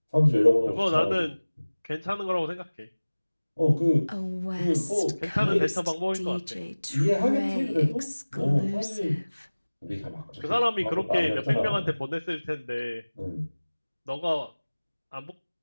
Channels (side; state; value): both; inverted; correlation -1.00